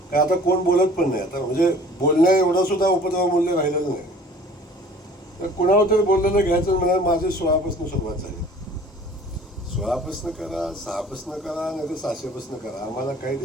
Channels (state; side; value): normal; both; correlation 0.48